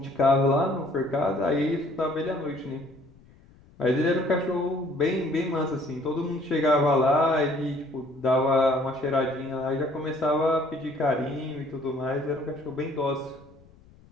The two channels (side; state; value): left; noise; rumble, 27 dB below the sound